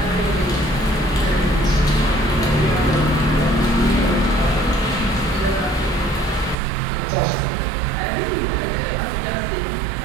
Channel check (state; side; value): drops out; left; at 6.6 s